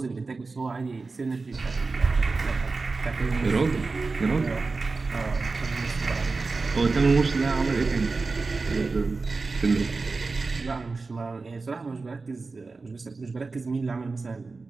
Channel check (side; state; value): left; quieter; 4.0 dB